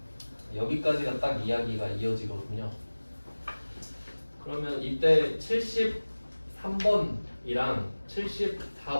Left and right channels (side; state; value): both; inverted; correlation -1.00